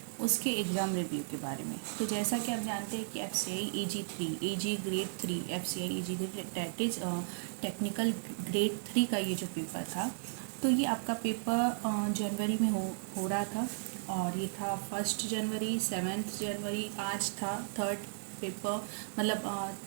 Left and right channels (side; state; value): left; silent; 54 dB below the other